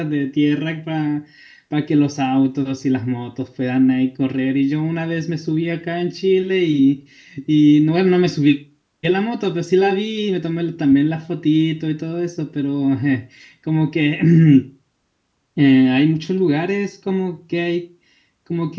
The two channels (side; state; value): both; identical; correlation 1.00